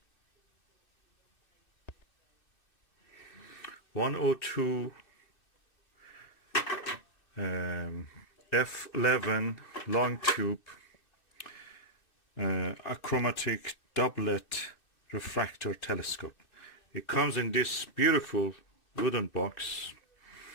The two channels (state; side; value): late; right; 2.6 ms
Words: 102 F11 long tube achromatic doublet refractor telescope. It comes in this beautiful wooden box.